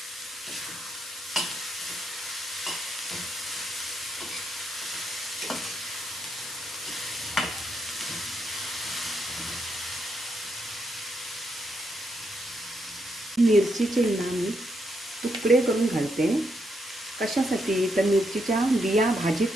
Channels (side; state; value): both; normal; correlation 0.78